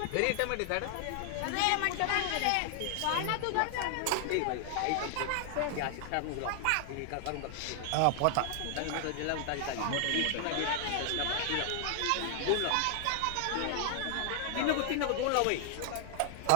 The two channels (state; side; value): different; both; correlation 0.00